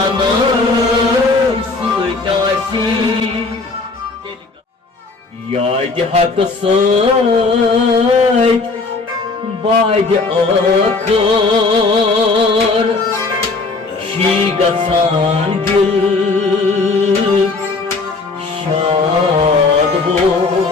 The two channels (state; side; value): quieter; right; 3.8 dB